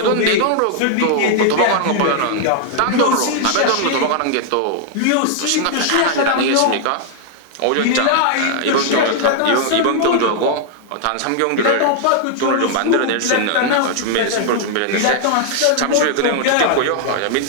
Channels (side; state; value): both; different; correlation 0.00